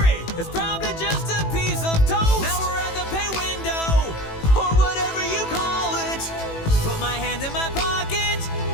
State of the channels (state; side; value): late; right; 18 ms